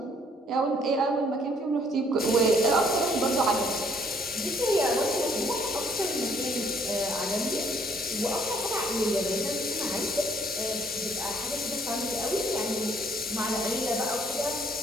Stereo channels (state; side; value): normal; both; correlation 0.63